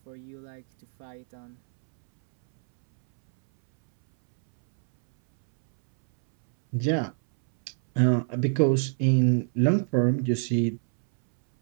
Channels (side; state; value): left; silent; 62 dB below the other